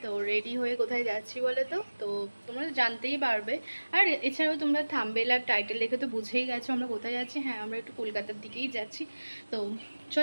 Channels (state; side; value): inverted; both; correlation -1.00